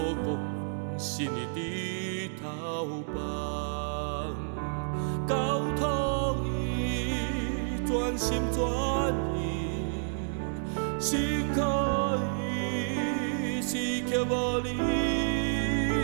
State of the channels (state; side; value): silent; left; digital silence